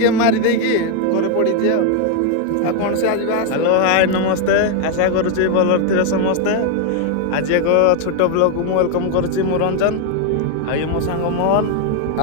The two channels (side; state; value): both; different; correlation 0.01